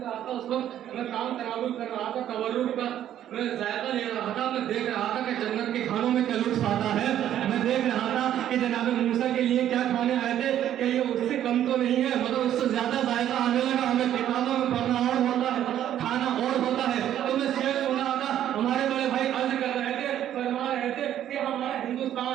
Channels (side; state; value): left; quieter; 11.2 dB